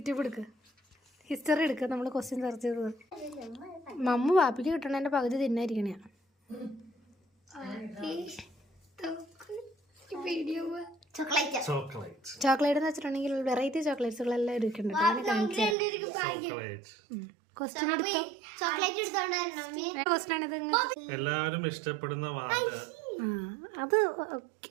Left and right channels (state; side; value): drops out; left; at 15.8 s